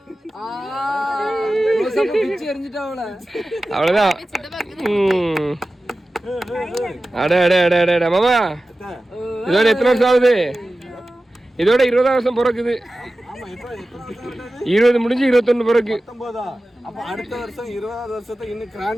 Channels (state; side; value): normal; both; correlation 0.95